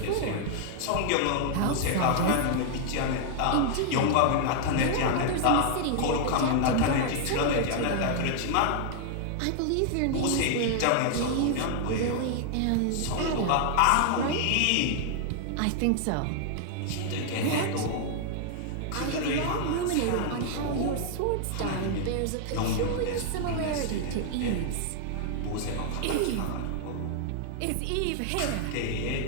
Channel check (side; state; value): both; different; correlation 0.00